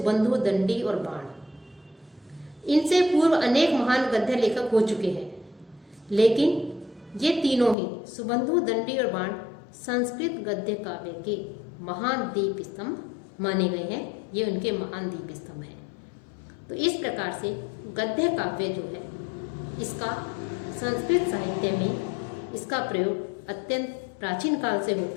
दंडी और बाण। इनसे पूर्व अनेक महान गद्य लेखक हो चुके हैं, लेकिन ये तीनों ही, सुबंधु, दंडी और बाण, संस्कृत गद्य काव्य के महान दीप स्तंभ माने गए हैं। ये उनके महान दीप स्तंभ हैं। तो इस प्रकार से गद्य काव्य जो है, इसका संस्कृत साहित्य में इसका प्रयोग अत्यंत प्राचीन काल से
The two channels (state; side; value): drops out; right; at 7.8 s